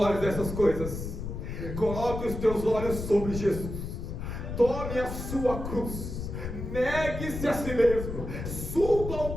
dessas coisas, coloque os teus olhos sobre Jesus. Tome a sua cruz, negue-se a si mesmo, suba ao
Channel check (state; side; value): noise; left; rumble, 6 dB below the sound